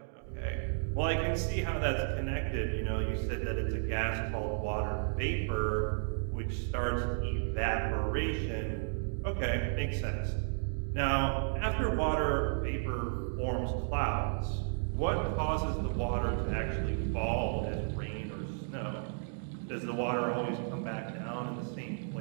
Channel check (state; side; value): silent; left; digital silence